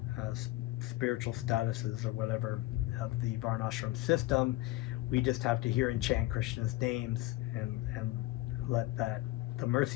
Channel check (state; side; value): quieter; right; 17.5 dB